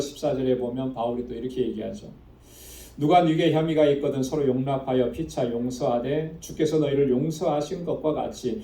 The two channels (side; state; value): both; identical; correlation 1.00